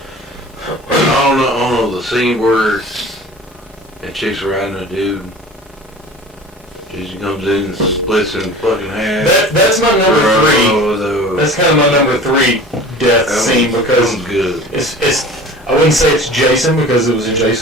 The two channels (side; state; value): both; normal; correlation 0.40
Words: I don't know the scene where that chick's riding a dude. Jason comes in and splits in fucking half. That's my number three. Oh, That's kind of my number three death scene because good. it's I wouldn't say it's Jason because it was in